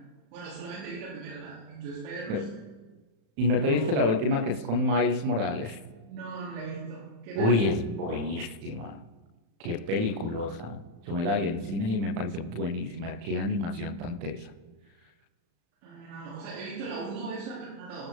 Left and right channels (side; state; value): left; late; 35 ms